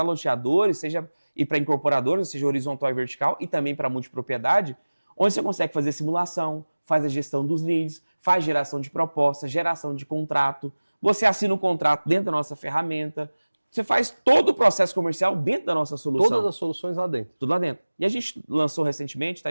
loteadores, e para incorporadores, seja horizontal e vertical, e também para multipropriedade, onde você consegue fazer simulação, faz a gestão dos leads, faz geração de propostas, geração de contrato, você assina um contrato dentro da nossa ferramenta, você faz todo o processo comercial dentro da nossa solução. Todas as soluções lá dentro. Tudo lá dentro. E a gente lançou recentemente, tá?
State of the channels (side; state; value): both; inverted; correlation -1.00